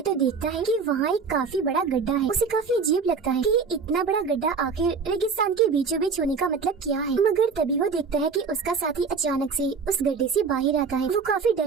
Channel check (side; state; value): left; quieter; 5.2 dB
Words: तो देखता है कि वहाँ एक काफी बड़ा गड्ढा है। उसे काफी अजीब लगता है कि इतना बड़ा गड्ढा आखिर रेगिस्तान के बीचों बीच होने का मतलब क्या है, मगर तभी वो देखता है कि उसका साथी अचानक से उस गड्ढे से बाहर आता है। वो काफी